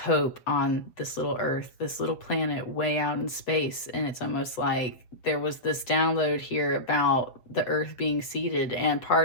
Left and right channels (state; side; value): late; right; 7.7 ms